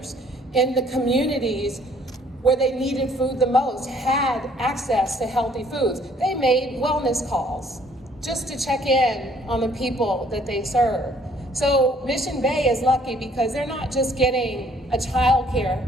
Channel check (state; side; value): normal; both; correlation 0.61